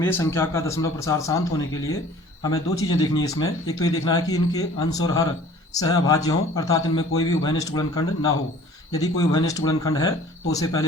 संख्या का दशमलव प्रसार शांत होने के लिए हमें दो चीज़ें देखनी है इसमें। एक तो ये देखना है कि इनके अंश और हर सहअभाज्य हों, अर्थात इनमें कोई भी उभयनिष्ठ गुणनखंड ना हो। यदि कोई उभयनिष्ठ गुणनखंड है तो उसे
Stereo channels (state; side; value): normal; both; correlation 0.49